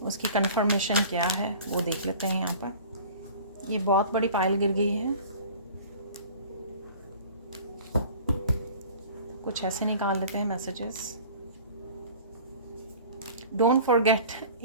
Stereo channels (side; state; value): both; inverted; correlation -0.44